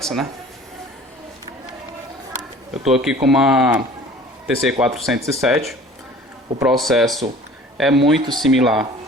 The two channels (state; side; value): normal; both; correlation 0.47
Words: né? Eu estou aqui com uma TC407. O processo é muito similar,